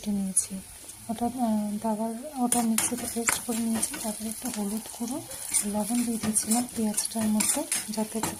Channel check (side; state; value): both; identical; correlation 1.00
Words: নিয়েছি। ওটা মিক্সিতে পেস্ট করে নিয়েছি। তারপরে একটু হলুদ গুঁড়ো, লবণ দিয়ে দিয়েছিলাম পেঁয়াজটার মধ্যে যাতে একটু